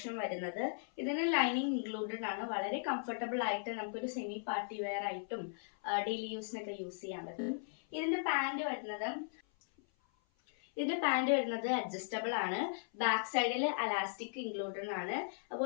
വരുന്നത്. ഇതിന് ലൈനിങ് ഇൻക്ലൂഡഡ് ആണ്. വളരെ കംഫർട്ടബിൾ ആയിട്ട് നമുക്കൊരു സെമി പാർട്ടി വെയർ ആയിട്ടും ഡെയിലി യൂസിനൊക്കെ യൂസ് ചെയ്യാൻ പറ്റും. ഇതിന്റെ പാന്റ് വരുന്നത് അഡ്ജസ്റ്റബിൾ ആണ്. ബാക്ക് സൈഡിൽ അലാസ്റ്റിക് ഇൻക്ലൂഡഡ് ആണ്.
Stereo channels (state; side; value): silent; right; 53 dB below the other